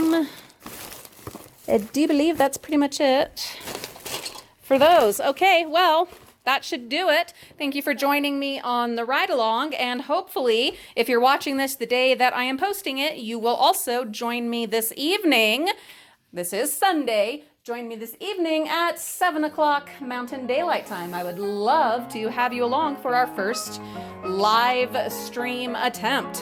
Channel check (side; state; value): both; identical; correlation 1.00